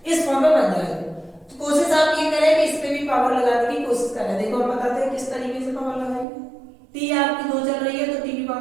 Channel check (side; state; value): left; drops out; at 6.2 s